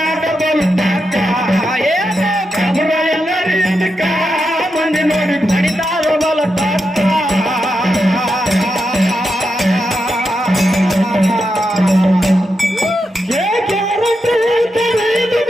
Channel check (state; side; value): normal; both; correlation 0.86